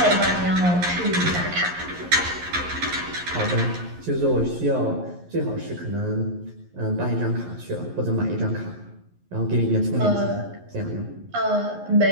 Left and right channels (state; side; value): late; left; 11 ms